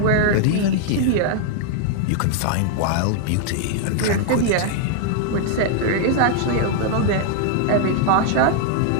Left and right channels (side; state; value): both; different; correlation 0.00